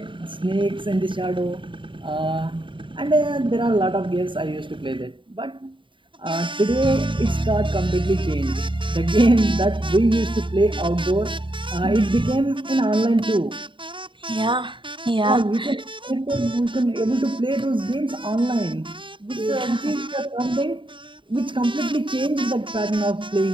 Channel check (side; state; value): left; late; 0.24 ms